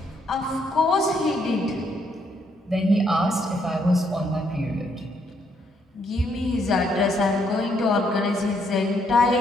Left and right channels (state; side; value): normal; both; correlation 0.73